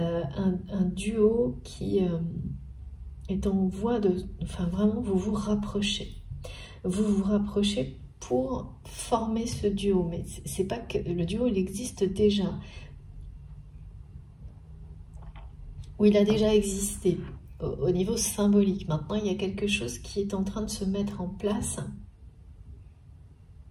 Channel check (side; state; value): both; identical; correlation 1.00